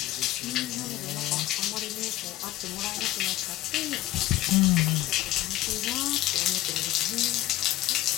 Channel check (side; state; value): right; quieter; 15.6 dB